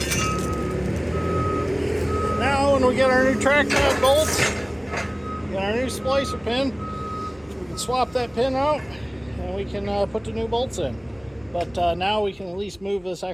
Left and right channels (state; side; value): noise; left; hum, 27 dB below the sound